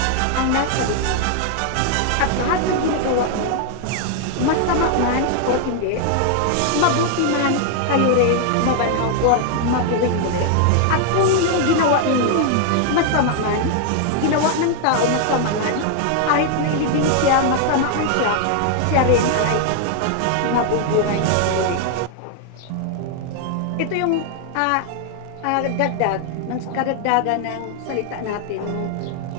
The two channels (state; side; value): different; both; correlation 0.00